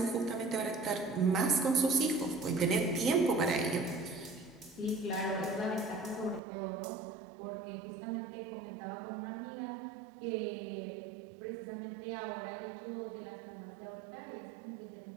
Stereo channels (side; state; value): left; drops out; at 6.4 s